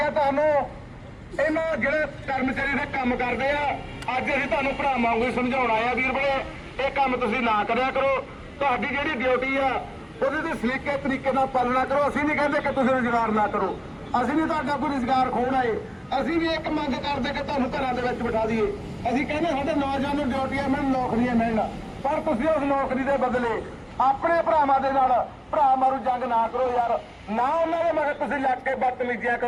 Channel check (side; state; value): both; identical; correlation 1.00